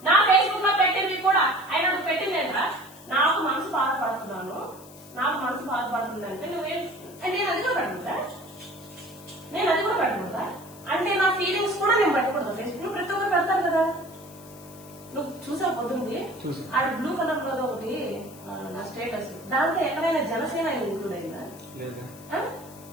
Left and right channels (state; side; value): noise; left; hiss, 21 dB below the sound